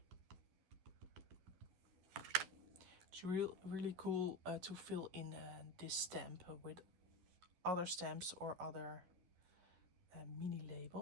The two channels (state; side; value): late; left; 12 ms